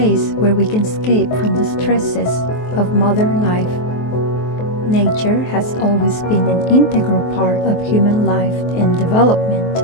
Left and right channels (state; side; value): late; right; 23 ms